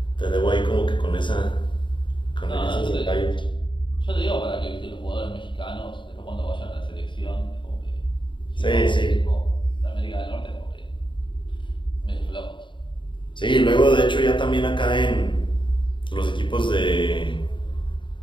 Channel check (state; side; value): late; right; 0.23 ms